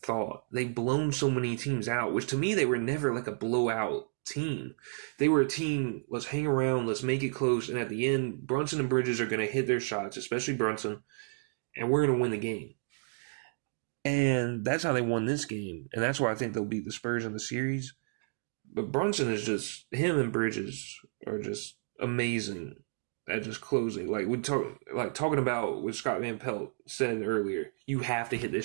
They've blown so many teams out, which to me, they were never like a blowout team. They were a team, let's hang around, let's make it close, and at the end, Brunson and Bridges are going to hit their shots, especially Brunson, and we're going to win the game. And that's how they won this game, and that's why I think they'll beat the Spurs in the series. But Brunson is just, him and Bridges are just amazing at just closing. Talking about what Scott Van Pelt said earlier, you have to hit this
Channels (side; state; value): left; silent; digital silence